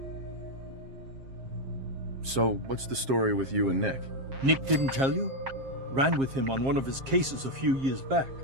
So, what's the story with you and Nick? Nick didn't tell you? Ran with him on one of his cases a few years back,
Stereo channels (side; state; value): left; late; 7.5 ms